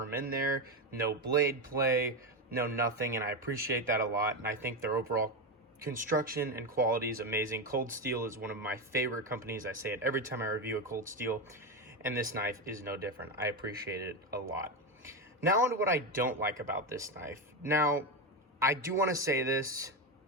in there. No blade play, no nothing, and I appreciate that a lot. And I think their overall construction and quality is amazing. Cold Steel is one of my favorite companies. I say it every time I review a Cold Steel, and this knife is no different. I appreciate it a lot. Now on to what I don't like about this knife. Now, I do want to say this.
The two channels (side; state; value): both; normal; correlation 0.13